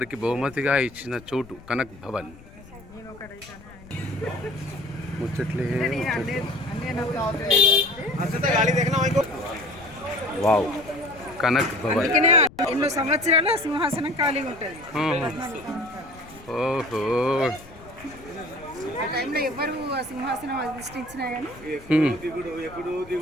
బహుమతిగా ఇచ్చిన చోటు కనక్ భవన్. ముచ్చట్లే వావ్, కనక్ భవన్. ఎన్నో సంవత్సరాలు సింహాసనం ఖాళీగా ఉంటుంది. ఓహో, ఆ టైంలో ఎవరు ఆ సింహాసనం అధిష్ఠించినా కానీ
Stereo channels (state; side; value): noise; left; rumble, 20 dB below the sound